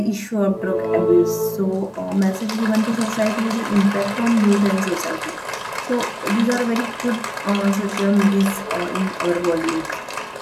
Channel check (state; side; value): identical; both; correlation 1.00